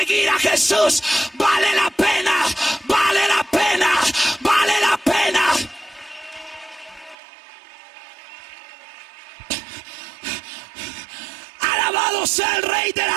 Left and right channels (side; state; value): left; drops out; at 7.2 s